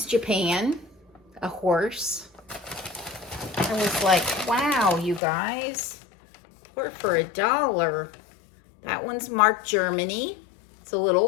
Japan. A horse. I was like, wow, you guys. 4 for $1. That one's marked Germany. It's a little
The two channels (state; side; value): drops out; right; at 5.2 s